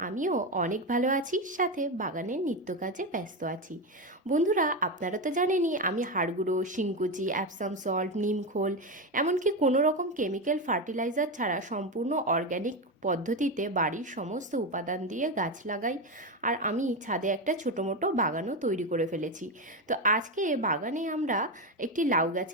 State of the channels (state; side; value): normal; both; correlation 0.13